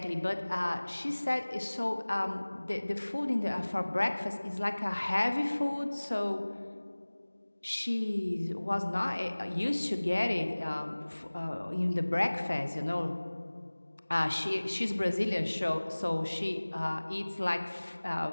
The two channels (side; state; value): both; inverted; correlation -1.00